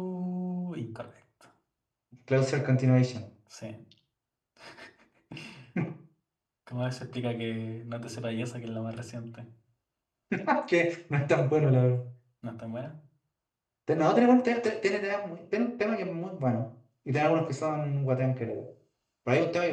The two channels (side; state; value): both; identical; correlation 1.00